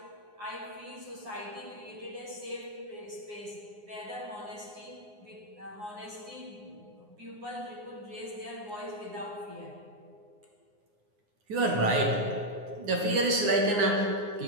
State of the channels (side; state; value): left; late; 9.6 ms